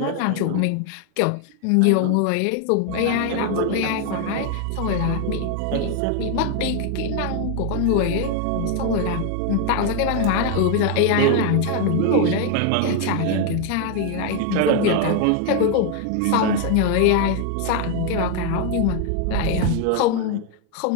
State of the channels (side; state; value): both; different; correlation 0.01